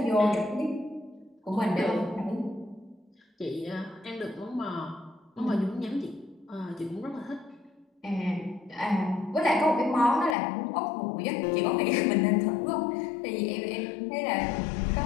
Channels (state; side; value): drops out; right; at 10.4 s